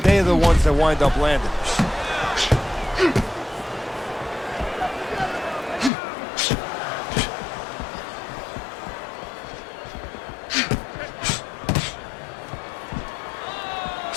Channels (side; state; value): right; drops out; at 5.9 s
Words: They're the ones that wind up landing.